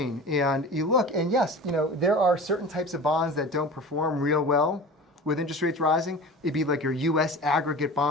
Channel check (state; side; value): normal; both; correlation 0.35